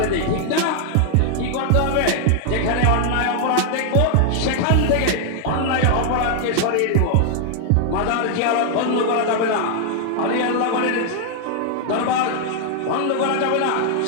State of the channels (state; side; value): different; both; correlation 0.00